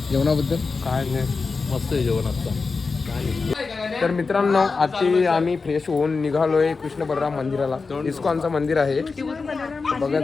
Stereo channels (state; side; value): quieter; right; 4.4 dB